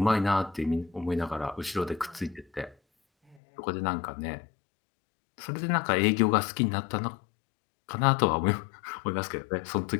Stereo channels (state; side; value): drops out; right; at 3.4 s